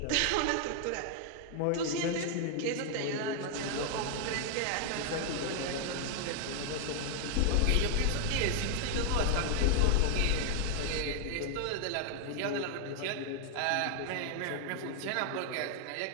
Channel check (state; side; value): different; both; correlation 0.00